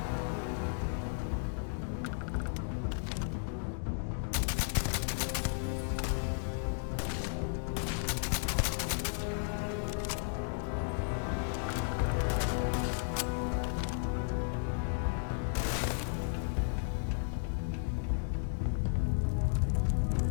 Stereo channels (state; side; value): silent; right; digital silence